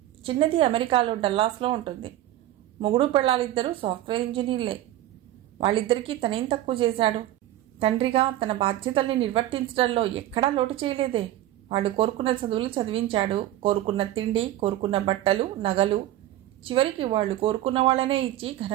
చిన్నది అమెరికాలో డల్లాస్లో ఉంటుంది. మొగుడు పెళ్ళాలిద్దరూ సాఫ్ట్వేర్ ఇంజనీర్లే. వాళ్ళిద్దరికీ తనేం తక్కువ చేశాడు? తండ్రిగా తన బాధ్యతల్ని నిర్వర్తించడంలో ఎక్కడా లోటు చేయలేదే. వాళ్ళు కోరుకున్న చదువులు చదివించాడు. కోరుకున్న తిండి, కోరుకున్న బట్టలు, నగలు, చివరికి వాళ్ళు కోరుకున్న వాళ్ళనే ఇచ్చి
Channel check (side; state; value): left; quieter; 13.8 dB